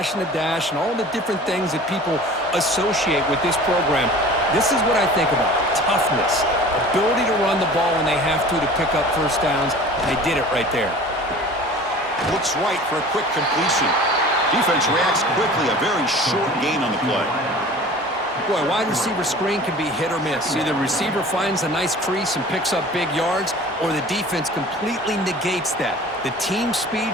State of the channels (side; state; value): both; normal; correlation 0.43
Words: and the dash and all the different things that people associate with this program. This is what I think about. Toughness, ability to run the ball when they have to pick up first downs. They did it right there. Looks right for a quick completion. Defense reacts quickly, a very short gain on the play. Boy, wide receiver screen can be hit or miss. Either receiver finds a nice crease and picks up big yards, or the defense completely negates that. The team